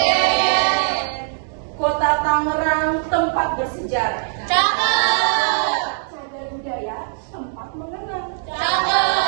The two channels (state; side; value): silent; left; digital silence